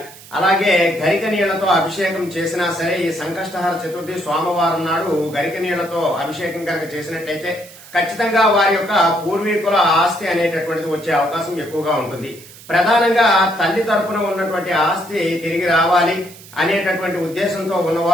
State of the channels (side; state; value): right; noise; hiss, 20 dB below the sound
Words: అలాగే గరిక నీళ్లతో అభిషేకం చేసినా సరే ఈ సంకష్టహర చతుర్థి సోమవారం నాడు గరిక నీళ్లతో అభిషేకం కనుక చేసినట్లయితే ఖచ్చితంగా వారి యొక్క పూర్వీకుల ఆస్తి అనేటటువంటిది వచ్చే అవకాశం ఎక్కువగా ఉంటుంది. ప్రధానంగా తల్లి తరపున ఉన్నటువంటి ఆస్తి తిరిగి రావాలి అనేటటువంటి ఉద్దేశంతో